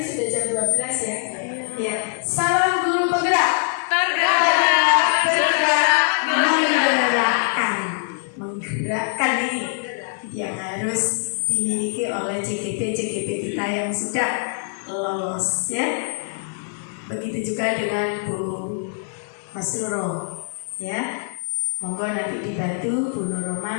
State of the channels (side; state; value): right; silent; digital silence